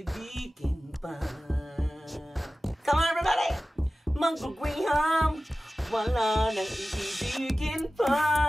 pa. Come on everybody! Mango Graham, wala nang iibigin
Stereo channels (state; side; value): normal; both; correlation 0.96